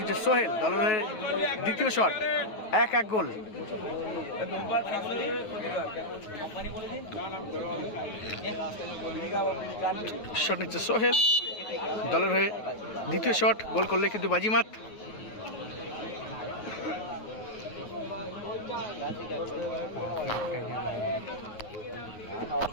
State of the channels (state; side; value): late; right; 9.3 ms